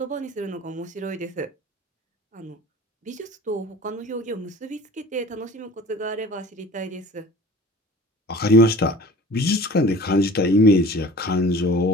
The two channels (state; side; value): normal; both; correlation 0.44